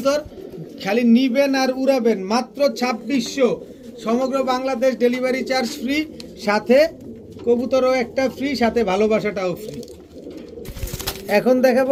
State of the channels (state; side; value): identical; both; correlation 1.00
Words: খালি নিবেন আর উড়াবেন। মাত্র 2600, সমগ্র বাংলাদেশ ডেলিভারি চার্জ ফ্রি, সাথে কবুতরও একটা ফ্রি, সাথে ভালোবাসাটাও ফ্রি। এখন